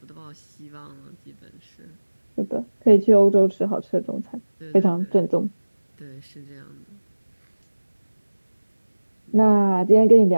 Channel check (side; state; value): both; inverted; correlation -1.00